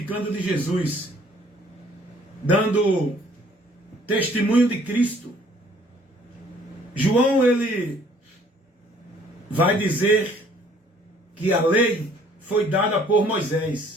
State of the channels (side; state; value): both; normal; correlation 0.58